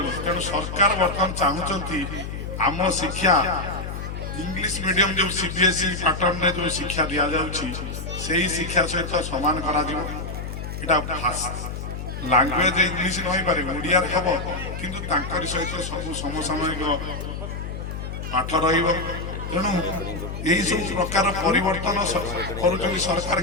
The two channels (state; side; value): noise; left; hum, 6 dB below the sound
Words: তেমন সরকার বর্তমান চাহুচ্ছেন আম শিক্ষা ইংলিশ মিডিয়াম যে সিবিএসই প্যাটর্নে যে শিক্ষা দিয়া যাচ্ছে সেই শিক্ষা সহিত সমান করা যাব। এটা ভাষা লাঙ্গুয়েজ ইংলিশ নইপারে ওড়িয়ার হব, কিন্তু তাঁকর সহিত সবু সমসাময়িক পাঠ রহব। তেণু এইসব প্রকার পরিবর্তন করছেন সরকার